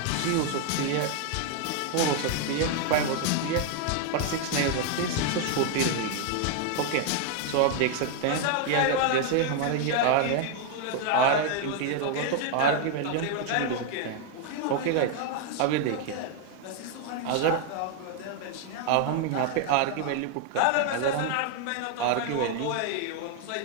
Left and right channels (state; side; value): different; both; correlation 0.00